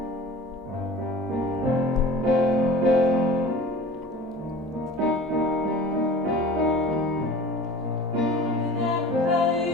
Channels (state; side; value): normal; both; correlation 0.41